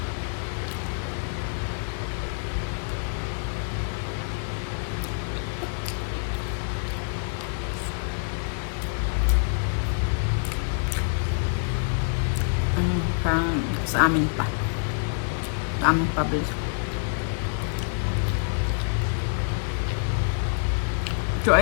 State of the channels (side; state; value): right; silent; 57 dB below the other